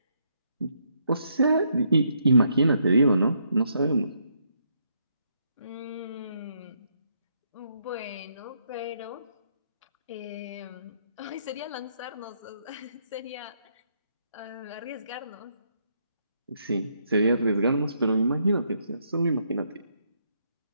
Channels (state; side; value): inverted; both; correlation -0.75